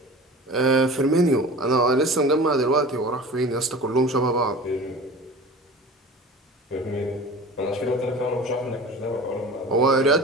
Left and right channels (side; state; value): both; normal; correlation 0.38